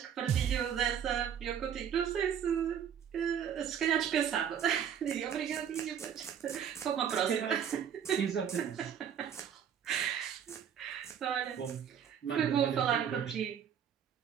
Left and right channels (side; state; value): left; quieter; 8.5 dB